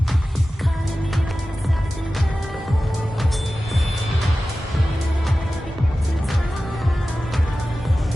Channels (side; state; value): both; normal; correlation 0.95